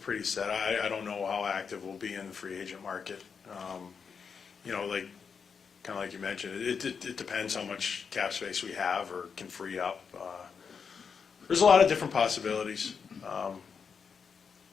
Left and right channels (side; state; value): right; quieter; 6.1 dB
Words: pretty set. I don't know how active we'll be in the free agent market. Like kind of like you mentioned, it depends how much cap space we have or can free up. There's a lot of different possibilities.